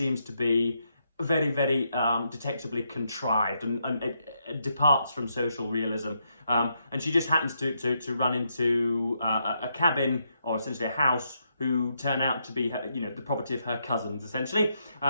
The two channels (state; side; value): inverted; both; correlation -0.79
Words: to be very, very detectably contrived, and it departs from social realism. And she just happens to run into a cabin, or essentially a house, who turn out to be her, the property of her cousins, essentially.